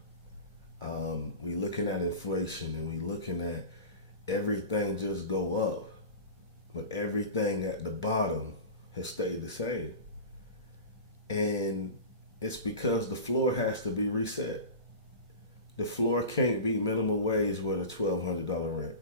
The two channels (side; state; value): both; inverted; correlation -0.31